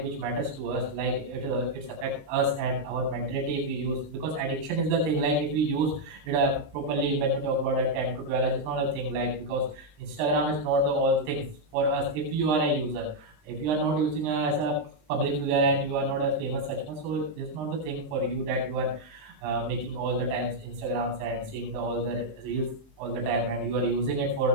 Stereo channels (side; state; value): left; late; 20 ms